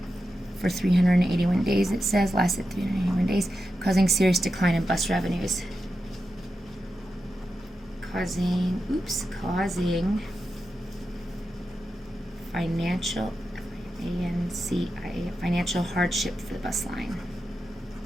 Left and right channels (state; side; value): normal; both; correlation 0.89